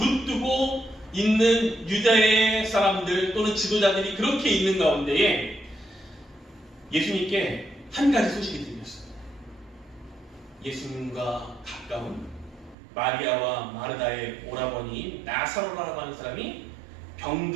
있는 유대의 사람들 또는 지도자들이 그렇게 있는 가운데에 예수님께 한 가지 소식이 들렸습니다. 예수님과 가까운 마리아와 마르다의 오라버니인 나사로라고 하는 사람이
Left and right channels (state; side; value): drops out; left; at 12.8 s